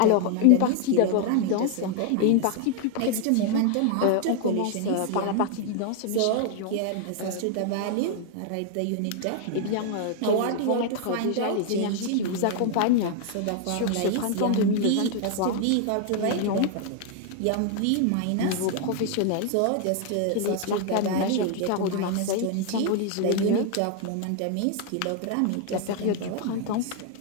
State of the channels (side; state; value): both; different; correlation 0.00